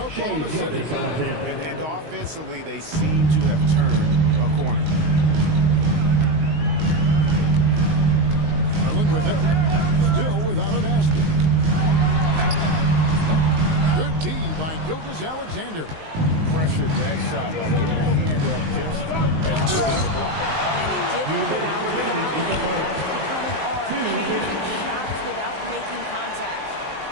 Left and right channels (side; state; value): left; late; 19 ms